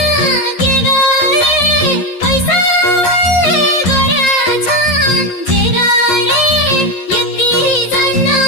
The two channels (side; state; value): right; late; 11 ms